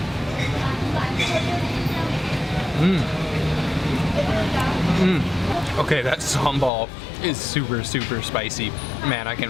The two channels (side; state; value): right; drops out; at 6.7 s